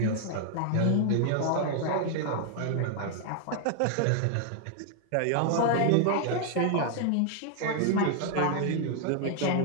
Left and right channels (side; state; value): both; different; correlation 0.00